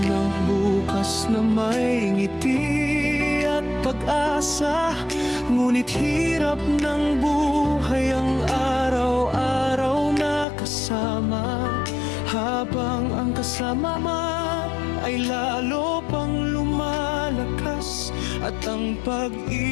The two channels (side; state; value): right; drops out; at 10.5 s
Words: ng bukas na may ngiti at pag-asa, ngunit hirap ng buhay ang araw-araw na kasama. Habang ang kasama ay lalo pang lumalakas, at ang